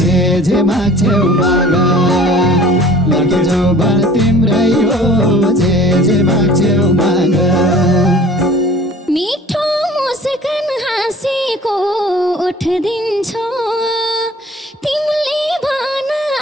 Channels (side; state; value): both; normal; correlation 0.48